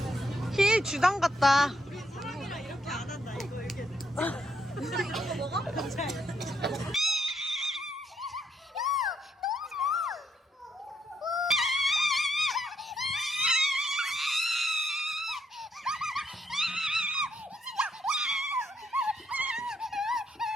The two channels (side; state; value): both; normal; correlation 0.75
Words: 힐 주당 같다. 우리 사람이랑 이렇게 안 한다. 이거 이렇게. 누나 이런 거 먹어?